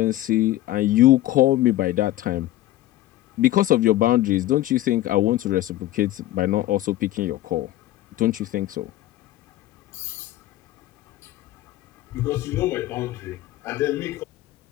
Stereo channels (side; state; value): right; quieter; 15.1 dB